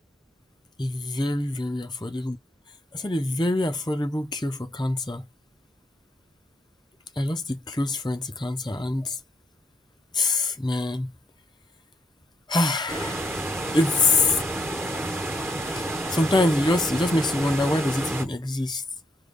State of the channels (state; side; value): normal; both; correlation 0.76